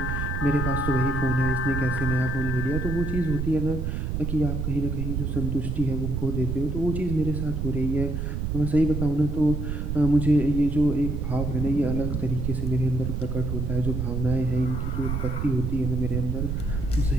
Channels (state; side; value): noise; right; rumble, 2 dB below the sound